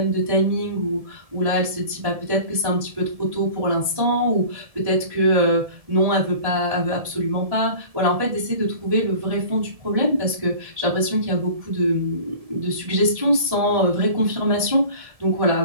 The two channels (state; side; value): late; left; 1.7 ms